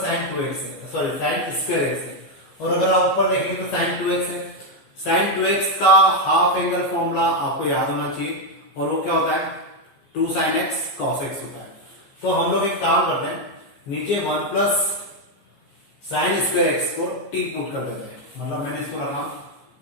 साइन 2x है, सॉरी साइन स्क्वायर एक्स है, और अगर आप ऊपर देखेंगे तो साइन 2x है। साइन 2x का हाफ एंगल फॉर्मूला आपको याद होना चाहिए, और वो क्या होता है 2 sin x cos x होता है। तो हम लोग एक काम करते हैं, नीचे 1 प्लस साइन स्क्वायर एक्स को t पुट कर देते हैं, मतलब मैंने इसको रखा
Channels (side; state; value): right; late; 15 ms